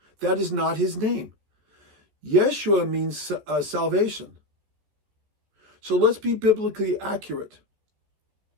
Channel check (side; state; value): left; late; 14 ms